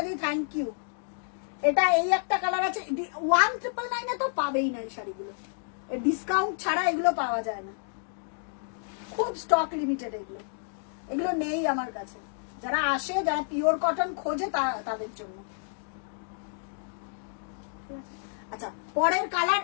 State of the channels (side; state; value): right; silent; digital silence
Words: থ্যাংক ইউ। এটা এই একটা কালার আছে। 1999 এ তো পাবেই না এই শাড়িগুলো, ডিসকাউন্ট ছাড়া এগুলো পাওয়া যায় না, খুব স্টক লিমিটেড এগুলো, এগুলো নেই আমার কাছে। যারা আসে, যারা পিওর কটন খোঁজে তাদের জন্য। আচ্ছা, পরের কালার